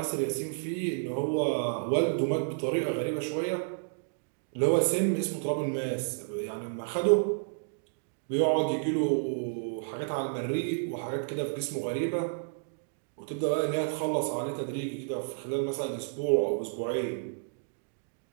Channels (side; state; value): left; silent; digital silence